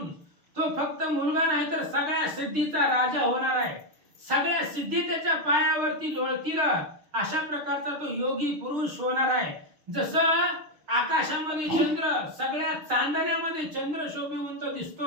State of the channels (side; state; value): left; late; 6.5 ms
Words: तो फक्त मुलगा नाही तर सगळ्या सिद्धीचा राजा होणार आहे. सगळ्या सिद्धी त्याच्या पायावरती लोळतील. अशा प्रकारचा तो योगी पुरुष होणार आहे. जसं आकाशामध्ये चंद्र, सगळ्या चांदण्यामध्ये चंद्र शोभिवंत